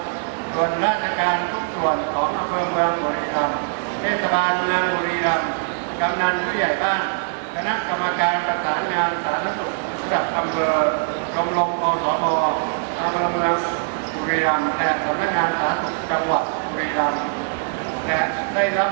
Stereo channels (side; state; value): left; silent; 57 dB below the other